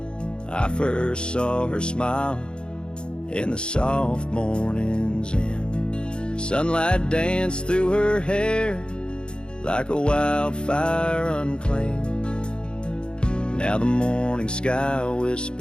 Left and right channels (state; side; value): late; right; 0.052 ms